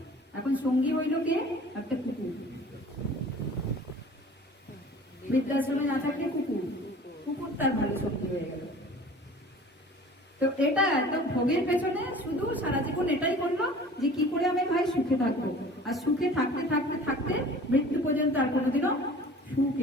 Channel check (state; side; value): normal; both; correlation 0.45